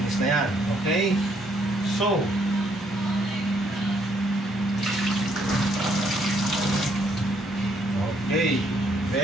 na yan. Okay, so okay,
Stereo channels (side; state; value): both; normal; correlation 0.69